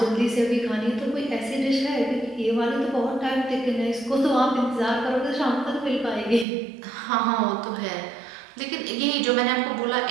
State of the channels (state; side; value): drops out; left; at 6.5 s